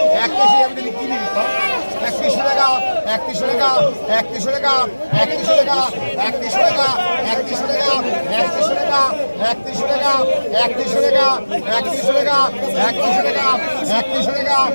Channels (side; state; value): both; inverted; correlation -1.00